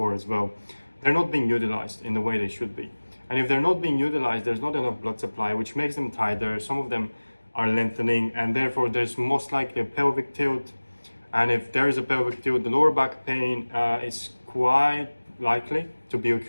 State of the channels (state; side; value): inverted; both; correlation -1.00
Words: as well, they're not being utilized in the way they should be. And if they're not being utilized, there's not enough blood supply, which makes them tighter. Some of them are lengthening, and therefore there's most likely a pelvic tilt. And if there is a pelvic tilt, the lower back pain is quite likely to be